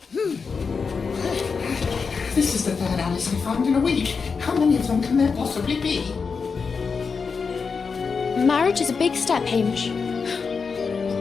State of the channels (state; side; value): quieter; right; 5.3 dB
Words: This is the third Alice I found in a week. How many of them can there possibly be? Marriage is a big step, Hamish.